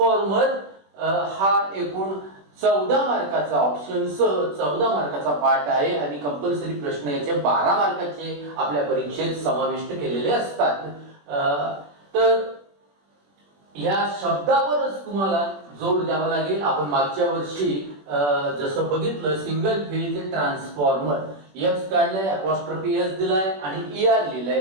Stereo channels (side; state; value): left; late; 21 ms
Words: हा एकूण 14 मार्काचा ऑप्शन सह 14 मार्काचा पार्ट आहे आणि कंपल्सरी प्रश्न याचे 12 मार्काचे आपल्या परीक्षेत समाविष्ट केलेले असतात. तर या शब्दावरच तुम्हाला जोर द्यावा लागेल. आपण मागच्या वर्षी जसं बघितलं सिंगल फेज ट्रान्सफॉर्मर एक्स काढलाय, अपॉस्ट्रोफी एस दिलाय आणि ER